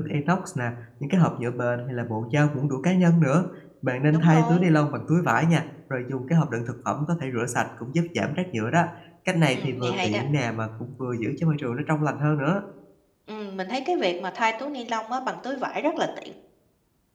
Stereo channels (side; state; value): both; identical; correlation 1.00